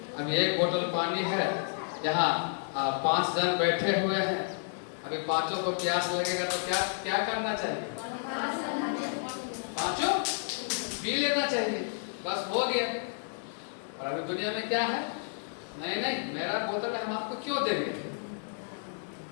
अब एक बोतल पानी है, यहाँ 5 जन बैठे हुए हैं। अभी पांचों को प्यास लगेगा तो क्या क्या करना चाहिए? पांचों पी लेना चाहिए, बस हो गया। और अभी दुनिया में क्या है? नहीं नहीं, मेरा बोतल है, हम आपको क्यों देंगे?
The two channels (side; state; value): right; silent; digital silence